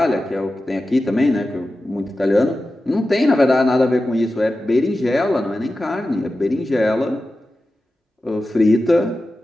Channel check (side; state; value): both; normal; correlation 0.93